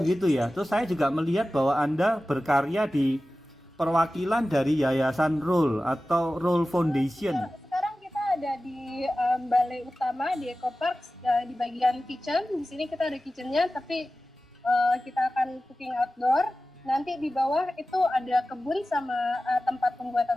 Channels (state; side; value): normal; both; correlation 0.95